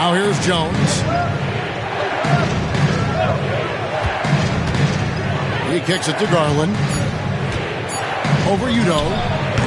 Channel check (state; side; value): identical; both; correlation 1.00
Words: here's Jones. He kicks it to Garland. Over Udo.